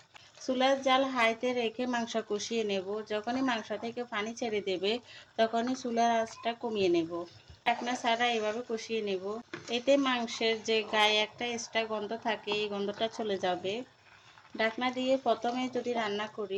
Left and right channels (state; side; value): identical; both; correlation 1.00